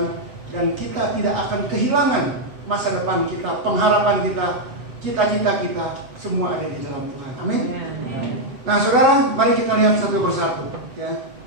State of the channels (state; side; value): late; left; 8.1 ms